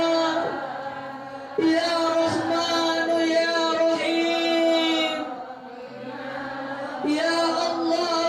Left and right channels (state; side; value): identical; both; correlation 1.00